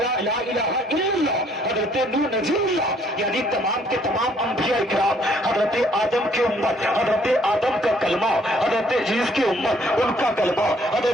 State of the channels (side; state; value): both; normal; correlation 0.63